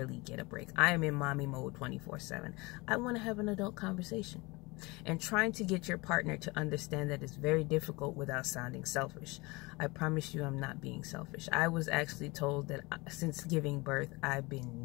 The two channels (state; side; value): quieter; right; 24.5 dB